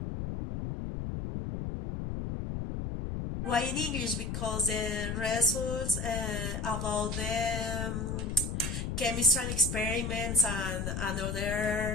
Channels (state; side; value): noise; left; rumble, 3 dB below the sound